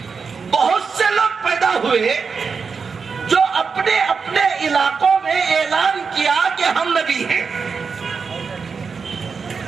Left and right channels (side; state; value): left; quieter; 5.4 dB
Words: بہت سے لوگ پیدا ہوئے جو اپنے اپنے علاقوں میں اعلان کیا کہ ہم نبی ہیں.